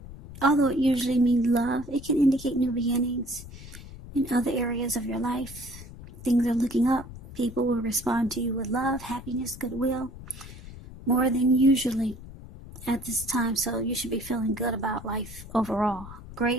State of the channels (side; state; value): left; noise; rumble, 15 dB below the sound